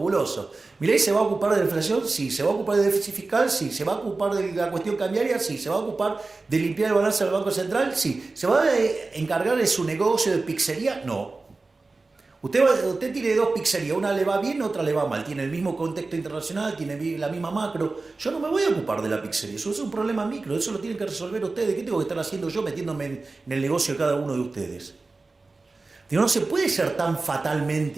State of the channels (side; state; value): left; quieter; 3.6 dB